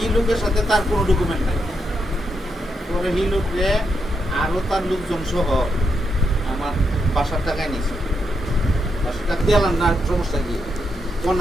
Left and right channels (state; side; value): normal; both; correlation 0.82